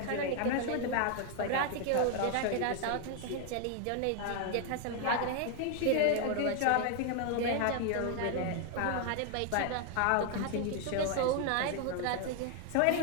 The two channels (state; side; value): different; both; correlation 0.00